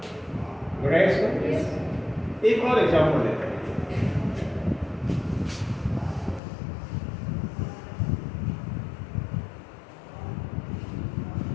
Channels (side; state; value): right; drops out; at 6.4 s